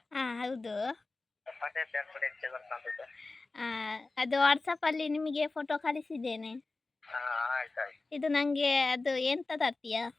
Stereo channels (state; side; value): quieter; right; 3.5 dB